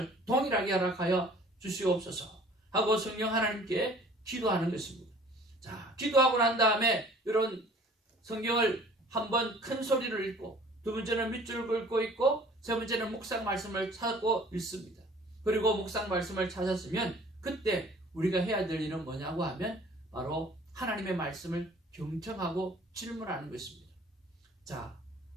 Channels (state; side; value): normal; both; correlation 0.51